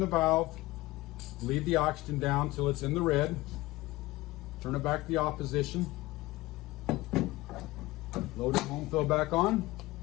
valve, leave the oxygen down till it's in the red, turn it back to the opposition, load the home fill back on,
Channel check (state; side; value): quieter; right; 19.2 dB